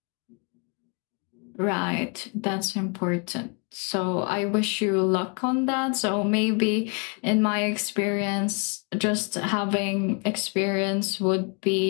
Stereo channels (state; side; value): quieter; right; 35.2 dB